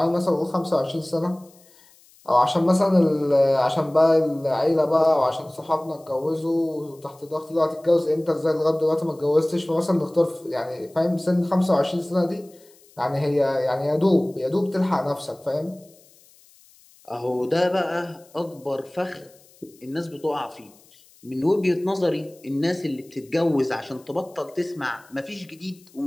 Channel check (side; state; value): left; noise; hiss, 28 dB below the sound